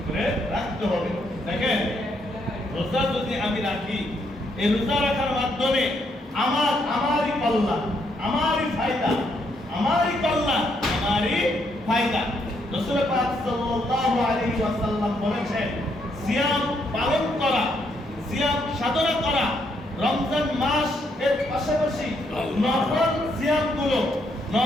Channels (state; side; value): normal; both; correlation 0.75